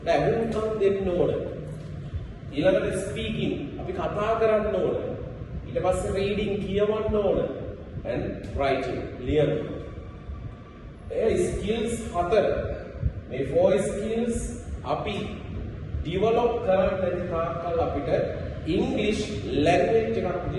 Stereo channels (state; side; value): identical; both; correlation 1.00